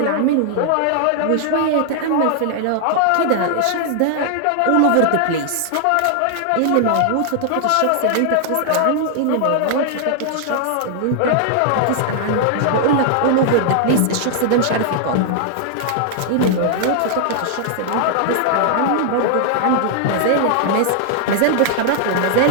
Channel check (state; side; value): different; both; correlation -0.01